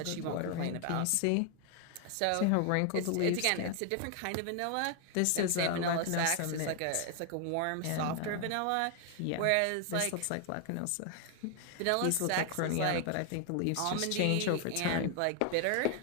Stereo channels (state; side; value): different; both; correlation 0.00